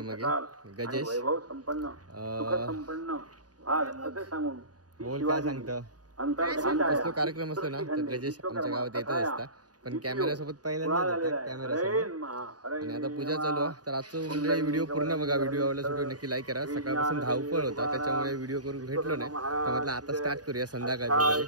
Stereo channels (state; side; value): late; left; 0.68 ms